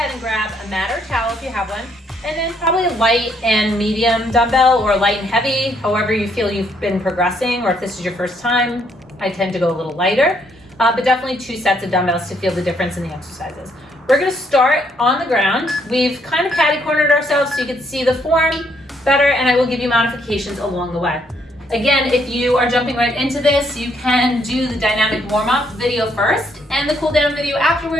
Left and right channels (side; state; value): both; normal; correlation 0.71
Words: and grab a mat or towel if you have one. And then probably a light and medium dumbbell or light and heavy, however you feel you've been progressing, or if this is your first time, I tend to go a little lighter. But definitely 2 sets of dumbbells to feel the difference in the exercises. We're going to start on the ground. We've kind of catty-cornered ourselves so you can see the form better, and I will give you modifications along the way. Again, if you are jumping right into this, you can do the dynamic warm-up video first and the cool-down video